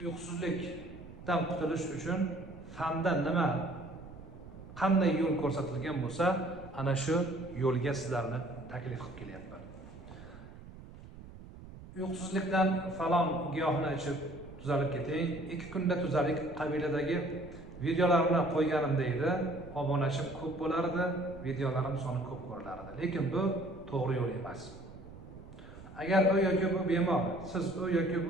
Uyqusizlikdan qutulish uchun fanda qanday yo'l ko'rsatilgan bo'lsa, ana shu yo'lga sizlarni taklif qilib kelyapman. Uyqusizlikdan falon giyohni ichib tuzalib keting, 2 kunda tuzalik qabilidagi videolarimni qo'yganimda edi, obunachim ko'p bo'lardi, videolarim soni ko'p ko'rilardi. Lekin bu to'g'ri yo'l emas. Agar u yoki bu bemor, siz u yoki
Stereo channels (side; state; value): right; noise; rumble, 16 dB below the sound